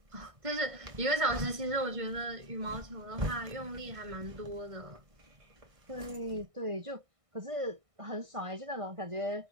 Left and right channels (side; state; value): left; late; 1.6 ms